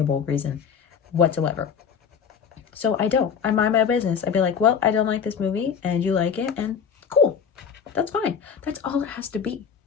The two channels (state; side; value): quieter; right; 7.1 dB